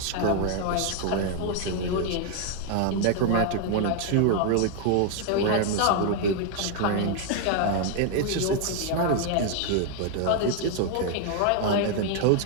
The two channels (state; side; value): different; both; correlation 0.00